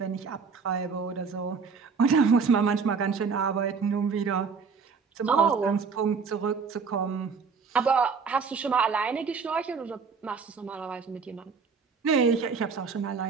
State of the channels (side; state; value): left; quieter; 5.5 dB